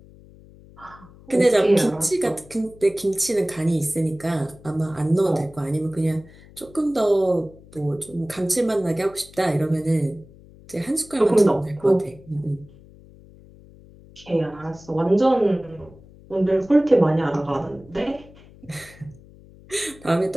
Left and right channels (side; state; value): left; noise; hum, 23 dB below the sound